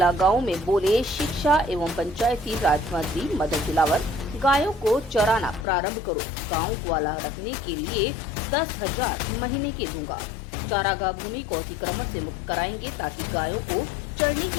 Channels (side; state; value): right; drops out; at 5.7 s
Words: गांव में बोले शिक्षा एवं पंचायती राज मंत्री मदन दिलावर, गायों को चराना प्रारंभ करो, गांव ग्वाला रखने के लिए 10,000 महीने के दूंगा। चारागाह भूमि को अतिक्रमण से मुक्त कराएंगे ताकि गायों को चरने